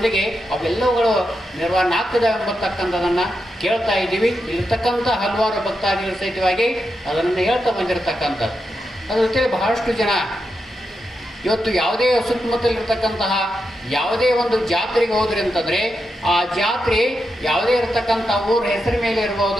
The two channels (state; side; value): normal; both; correlation 0.86